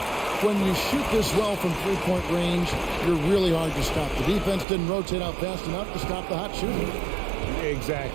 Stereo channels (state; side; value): drops out; left; at 4.7 s